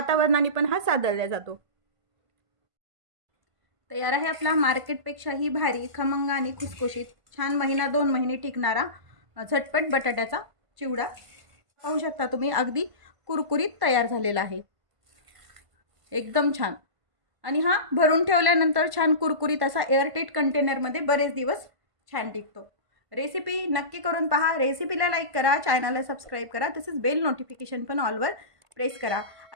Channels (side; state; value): left; late; 1.5 ms